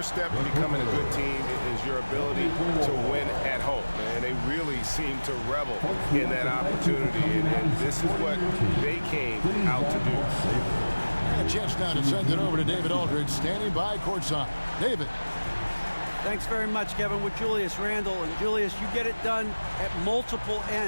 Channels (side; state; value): both; inverted; correlation -1.00